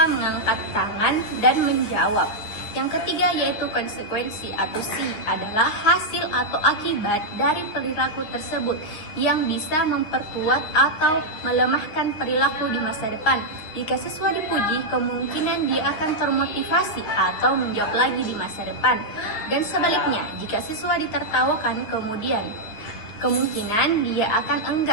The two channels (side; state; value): right; late; 9.7 ms